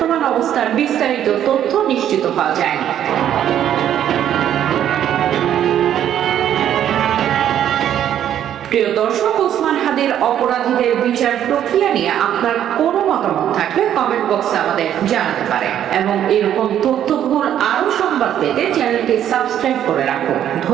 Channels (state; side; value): quieter; left; 10.5 dB